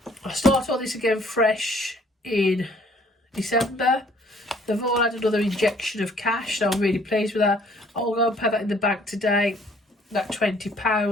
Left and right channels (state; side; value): normal; both; correlation 0.59